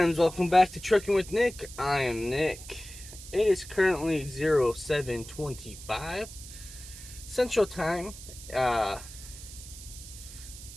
Welcome back to Trucking with Nick. I am Nick. It is currently 07:25 Central Time, 12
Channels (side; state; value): right; noise; hiss, 15 dB below the sound